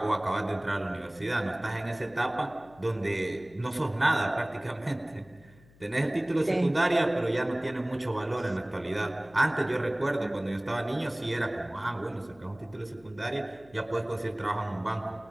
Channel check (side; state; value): left; noise; hum, 26 dB below the sound